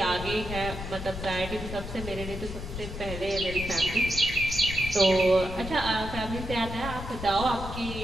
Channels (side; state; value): left; noise; rumble, 8 dB below the sound